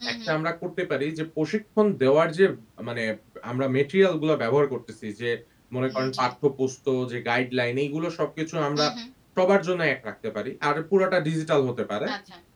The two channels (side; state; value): both; identical; correlation 1.00